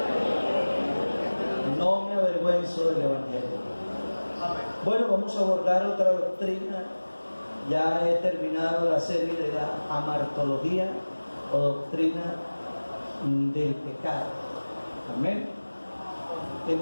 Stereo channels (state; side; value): inverted; both; correlation -1.00